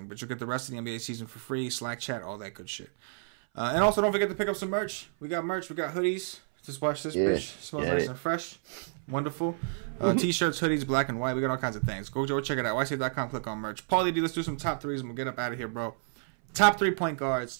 but you'll get the rest of the NBA season for free. Slack chat, all that good shit. And also don't forget to pick up some merch. We got merch. We got hoodies. Just watch this bitch. Smells nice and fresh. Wonderful. T-shirts, hoodies, black and white. We got all kinds of things. Go check it out. YC.com. Click on merch. Paulie D, let's do some top threes and we'll get up out of here, bro. Top 3 point guards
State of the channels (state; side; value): silent; left; 58 dB below the other